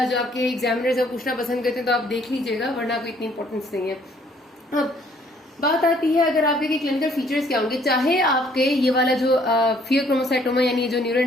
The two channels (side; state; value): both; normal; correlation 0.62